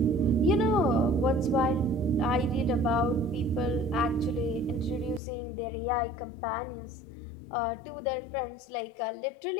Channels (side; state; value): right; drops out; at 5.2 s